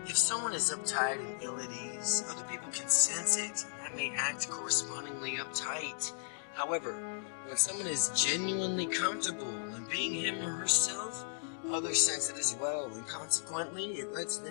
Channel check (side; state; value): right; silent; digital silence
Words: If someone is uptight and ill at ease, other people can sense it, and that may act correspondingly uptight. However, when someone is genuinely comfortable in being him or herself, others sense it as well, and consequently, it lets